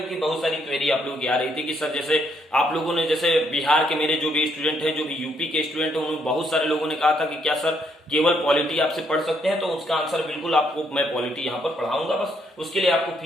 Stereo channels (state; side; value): normal; both; correlation 0.72